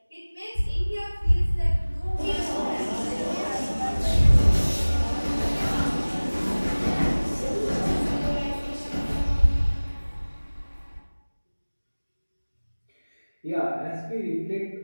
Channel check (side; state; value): both; inverted; correlation -1.00